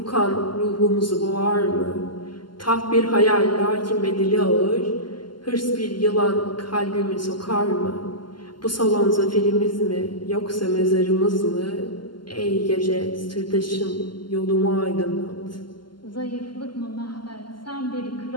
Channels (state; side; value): late; right; 0.71 ms